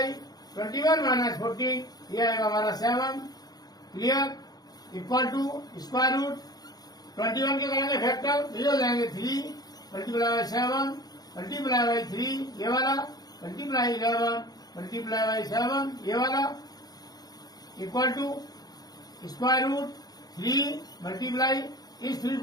21 माइनस 14, ये आएगा हमारा 7। Clear? Equal to square root 21 के करेंगे फैक्टर, तो ये हो जाएंगे 3 मल्टीप्लाई बाई 7 मल्टीप्लाई बाई 3, ये वाला मल्टीप्लाई 11 मल्टीप्लाई बाई 7, ये वाला equal to square root 3 multiply, इस 3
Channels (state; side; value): late; right; 0.19 ms